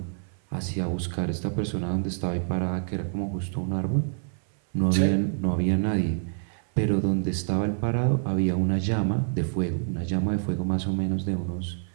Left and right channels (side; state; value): left; silent; 60 dB below the other